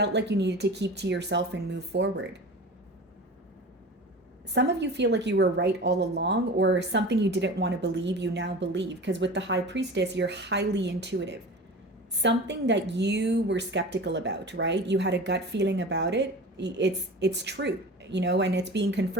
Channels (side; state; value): both; normal; correlation 0.35